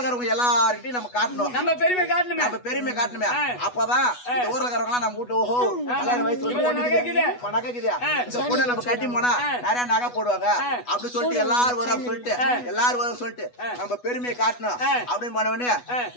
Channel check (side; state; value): right; late; 8.2 ms